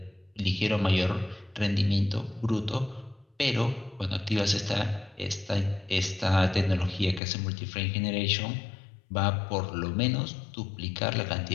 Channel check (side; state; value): right; drops out; at 7.2 s